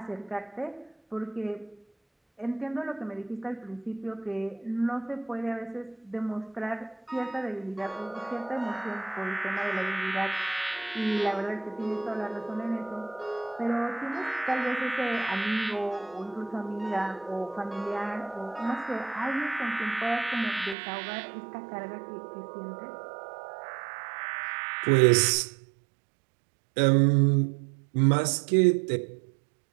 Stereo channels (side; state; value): left; drops out; at 20.8 s